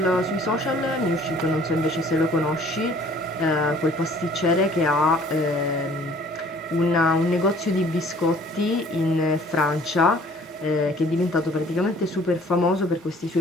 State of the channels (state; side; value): normal; both; correlation 0.54